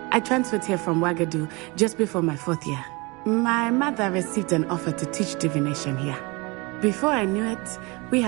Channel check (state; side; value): quieter; left; 26.5 dB